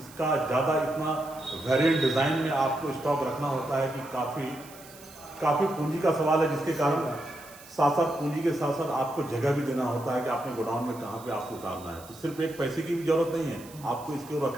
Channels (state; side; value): noise; right; hiss, 20 dB below the sound